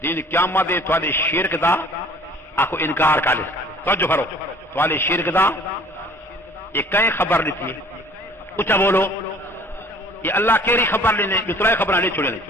دین قیامت دے تواڈے شرک دا آکو انکار کر لے، توجہ کرو تواڈے شرک دا یہ کہیں خبر لیتی ہے، اچھا بولو یہ اللہ کیری خبر لینے دوسرا خبر نہیں چھوڑے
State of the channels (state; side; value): normal; both; correlation 0.52